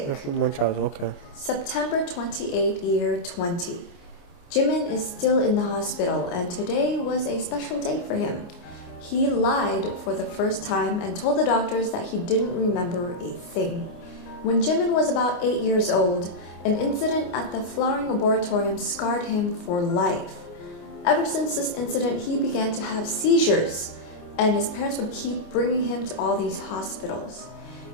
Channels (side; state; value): right; late; 29 ms